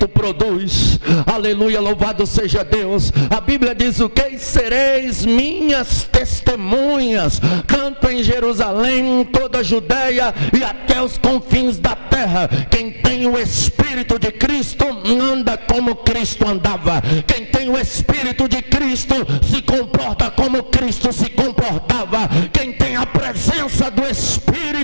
produz. Aleluia, louvado seja Deus. A Bíblia diz o que? Sereis minhas testemunhas, tanto em Jerusalém, toda a Judeia e até os confins da terra. Quem tem o Espírito de Cristo anda como Cristo andava. Quem tem o Espírito de Cristo se comporta como Cristo se comportava. Quem tem a presença do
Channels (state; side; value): inverted; both; correlation -1.00